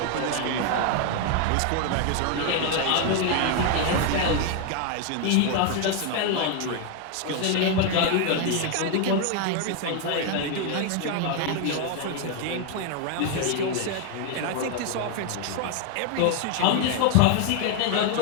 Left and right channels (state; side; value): different; both; correlation 0.01